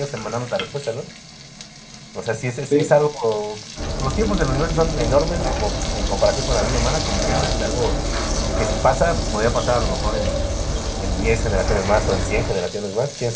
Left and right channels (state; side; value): identical; both; correlation 1.00